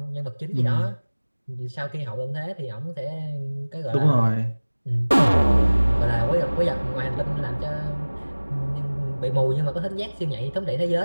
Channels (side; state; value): both; inverted; correlation -1.00